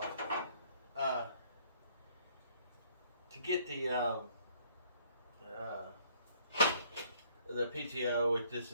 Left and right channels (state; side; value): inverted; both; correlation -0.62